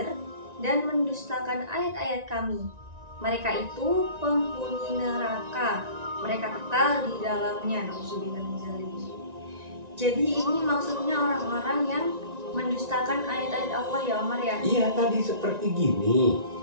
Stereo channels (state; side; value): late; left; 1.9 ms